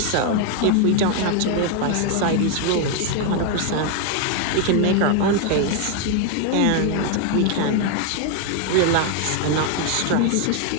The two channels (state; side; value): different; both; correlation 0.01